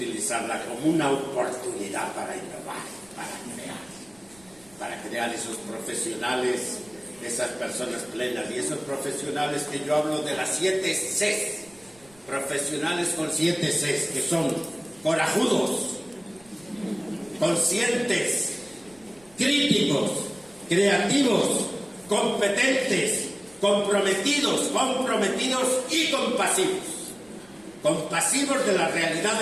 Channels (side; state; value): right; noise; rumble, 28 dB below the sound